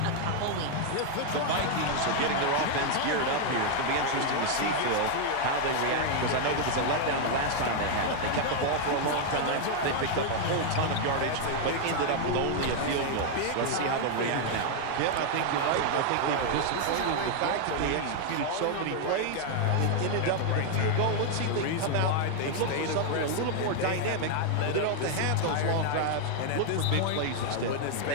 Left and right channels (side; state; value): both; different; correlation 0.00